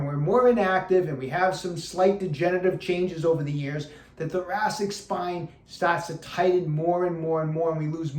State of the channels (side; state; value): both; identical; correlation 1.00